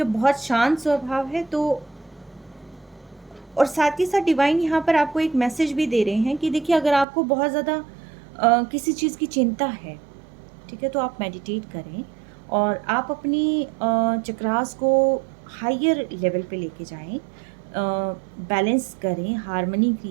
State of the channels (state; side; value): drops out; left; at 7.1 s